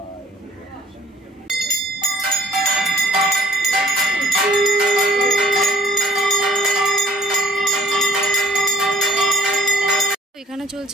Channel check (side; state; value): both; normal; correlation 0.57